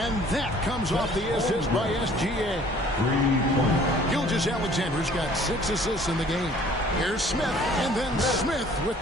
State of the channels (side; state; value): both; normal; correlation 0.54